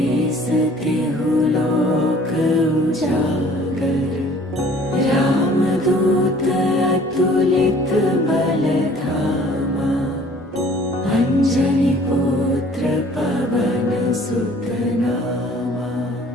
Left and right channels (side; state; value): both; normal; correlation 0.53